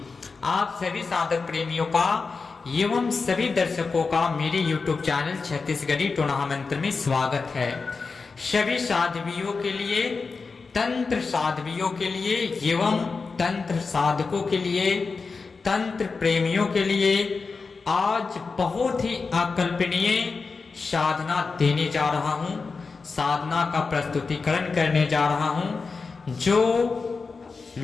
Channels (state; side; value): quieter; right; 4.5 dB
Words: आप सभी साधक प्रेमियों का एवं सभी दर्शकों का मेरे YouTube चैनल छत्तीसगढ़ी टोना मंत्र में स्वागत है। सभी साधवियों के लिए, तंत्र साधवियों के लिए एवं तंत्र साधकों के लिए, तंत्र प्रेमियों के लिए आज बहुत ही अकल्पनीय साधना देने जा रहा हूं। साधना का प्रस्तुतिकरण करने जा रहा हूं जो